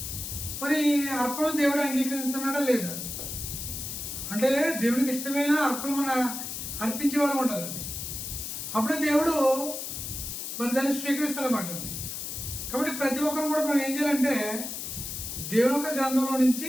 మరి అర్పణలు దేవుడు అంగీకరిస్తున్నాడా లేదా అంటే దేవుడికి ఇష్టమైన అర్పణ మన అర్పించే వాళ్ళు ఉండాలండి. అప్పుడే దేవుడు మరి దాన్ని స్వీకరిస్తాడన్నమాట. కాబట్టి ప్రతి ఒక్కరు కూడా మనం ఏం చేయాలంటే దేవుని యొక్క గ్రంథంలో నుంచి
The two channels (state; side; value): noise; left; hiss, 6 dB below the sound